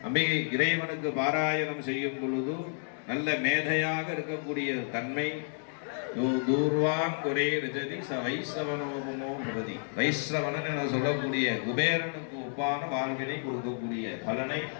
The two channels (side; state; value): right; silent; digital silence